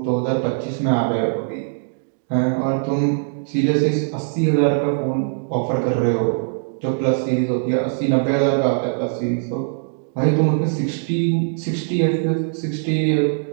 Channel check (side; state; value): left; silent; digital silence